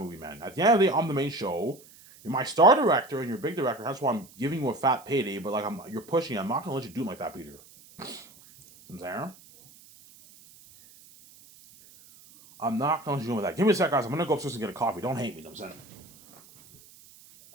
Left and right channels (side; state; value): right; noise; hiss, 24 dB below the sound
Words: man. At the end of the day, I'm the main show. You're my star director and you're a big director. That's why I'm giving you a fat payday. But like, you're pushing it. I'm not gonna let you do it like that, Peter. See what I'm saying? I'm not gonna let you do it like that. Give me a sec, guys. I'm gonna go upstairs and get a coffee. Don't hate me. You know what I'm saying?